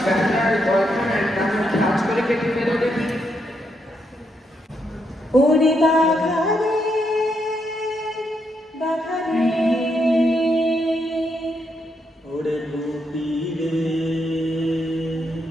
ব্যাটার বয়খানের নামে কাজ করে কেটে ফেলো দেখি ওরে বাঘারে বাঘারে ওরে বুপিলে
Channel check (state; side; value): normal; both; correlation 0.79